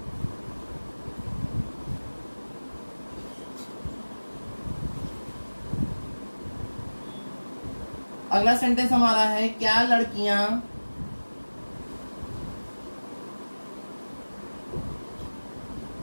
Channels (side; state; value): both; inverted; correlation -1.00